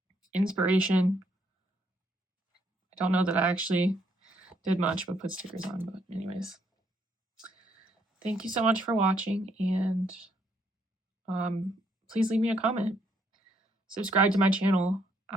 Inspiration. I don't know that I actually did much but put stickers on, but anyways. Thank you so much for watching, and please leave me a comment. Subscribe to my channel.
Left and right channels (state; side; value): normal; both; correlation 0.72